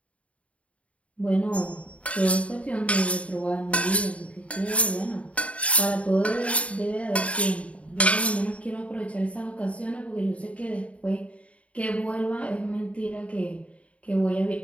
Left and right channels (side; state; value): right; late; 0.065 ms